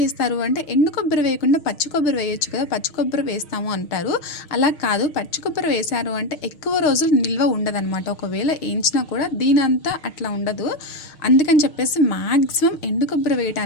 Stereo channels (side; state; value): right; late; 6.4 ms